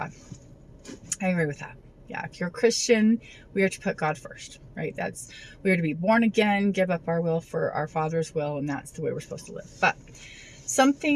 I agree with that. Yeah, if you're a Christian, we are to put God first, right? We are to be born again, give up our will for our Father's will, and that's the way we're supposed to live. But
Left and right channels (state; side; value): identical; both; correlation 1.00